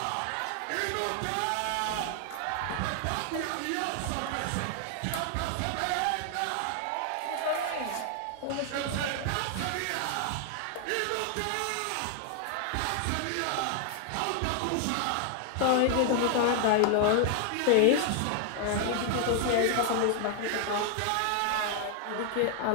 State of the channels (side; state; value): both; different; correlation 0.00